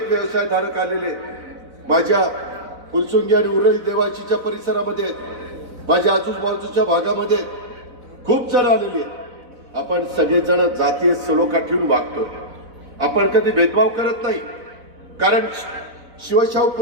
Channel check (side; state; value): left; late; 4.0 ms